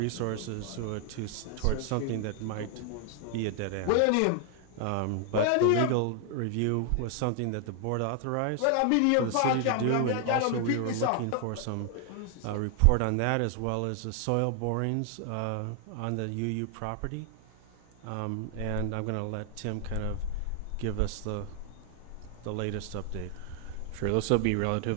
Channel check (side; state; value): both; different; correlation 0.00